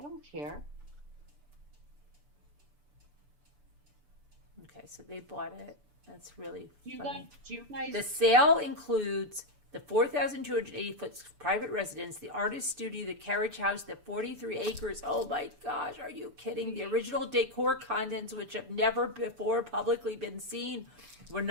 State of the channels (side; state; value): left; late; 6.9 ms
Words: don't care. Okay, so they bought it. That's really Do funny. you guys? The sale includes the 4,280-foot private residence, the artist studio, the carriage house, the 43 acres. Oh my gosh, are you kidding? The original decor contents, which have never before publicly been seen, were